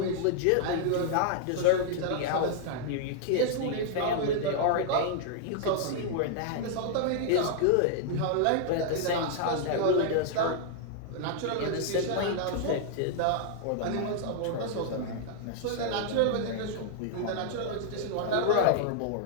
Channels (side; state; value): both; different; correlation -0.01